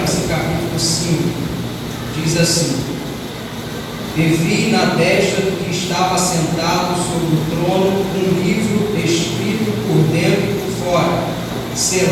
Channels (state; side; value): identical; both; correlation 1.00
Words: capítulo 5 diz assim: E vi na destra do que estava sentado sobre o trono um livro escrito por dentro e por fora,